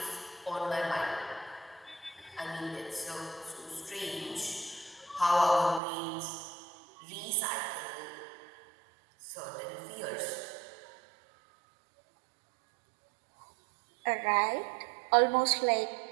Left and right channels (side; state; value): left; drops out; at 5.8 s